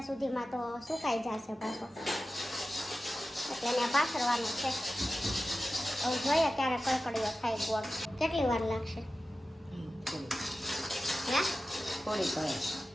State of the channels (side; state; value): both; normal; correlation 0.94